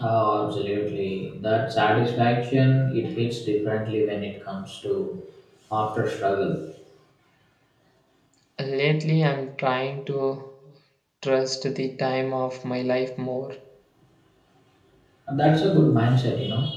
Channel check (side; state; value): both; identical; correlation 1.00